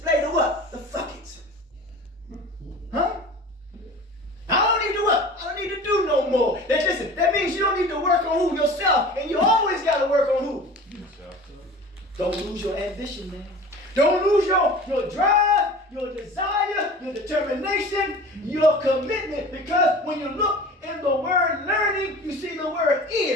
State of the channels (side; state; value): both; normal; correlation 0.39